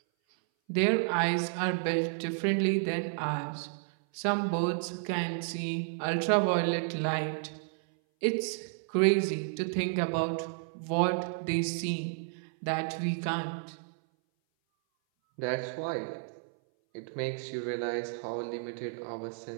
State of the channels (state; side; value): silent; left; 57 dB below the other